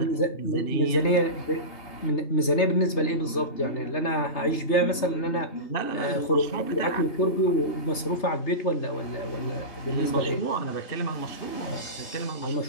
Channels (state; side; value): late; right; 3.3 ms